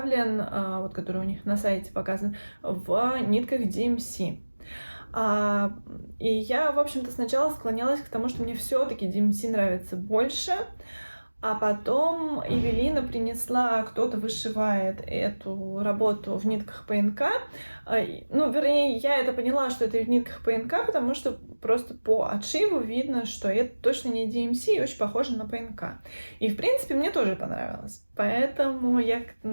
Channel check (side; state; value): both; inverted; correlation -1.00